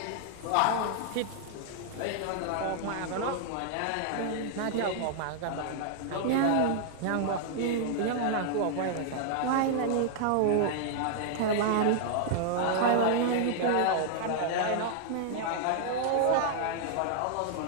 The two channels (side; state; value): both; different; correlation -0.01